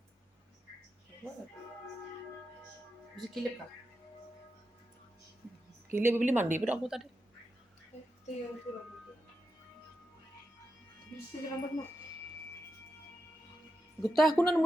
Bisa kilip kah? Gila beli mandi pada aku tadi. Itu yang tu rambut. Bisa je rambut mak. Getah aku nan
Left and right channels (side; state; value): both; normal; correlation 0.88